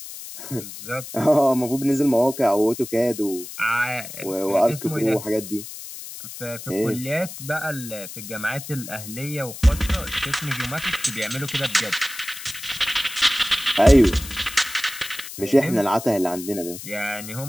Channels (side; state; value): left; noise; hiss, 12 dB below the sound